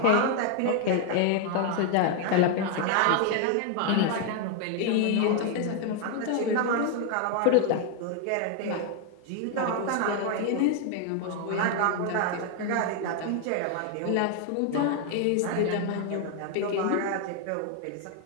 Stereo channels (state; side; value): different; both; correlation 0.00